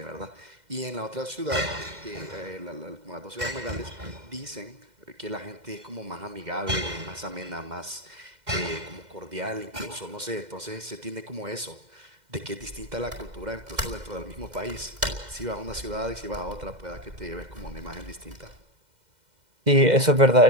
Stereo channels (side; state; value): left; late; 2.1 ms